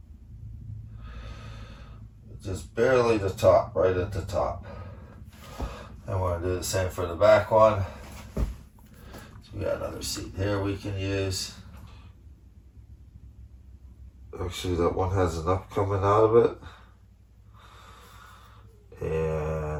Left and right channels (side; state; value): both; identical; correlation 1.00